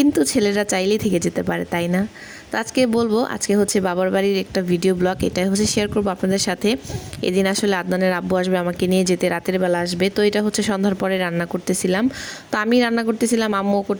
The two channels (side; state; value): both; identical; correlation 1.00